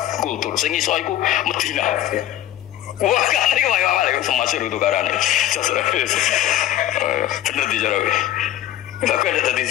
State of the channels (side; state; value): right; quieter; 12.6 dB